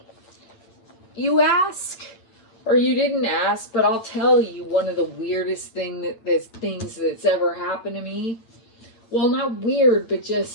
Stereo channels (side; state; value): right; late; 8.9 ms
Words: you ask? Or you didn't ask, but I'll tell you one of the weirdest things that's ever happened to me. Well, not weird, but